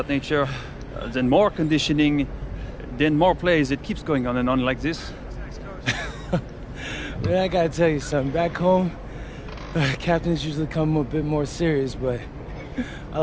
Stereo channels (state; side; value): identical; both; correlation 1.00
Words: nature. Then more conditioning. Then more plays. It keeps going on and on like this. Man, I gotta tell you something. Back home, captains usually come a bit more serious, but I